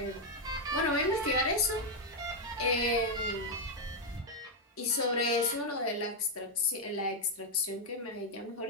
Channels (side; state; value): both; normal; correlation 0.01